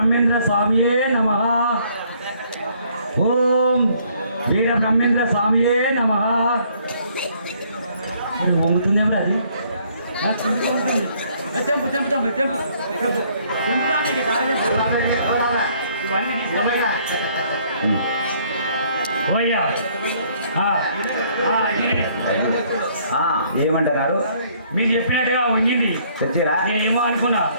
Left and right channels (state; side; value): inverted; both; correlation -0.64